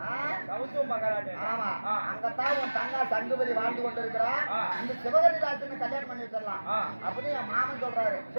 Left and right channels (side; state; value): both; inverted; correlation -1.00